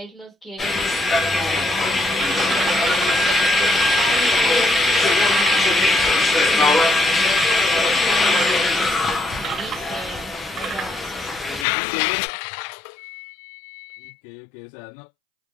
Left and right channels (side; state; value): right; drops out; at 11.7 s